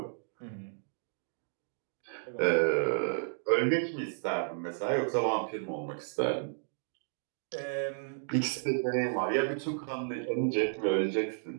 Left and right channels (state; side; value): silent; left; digital silence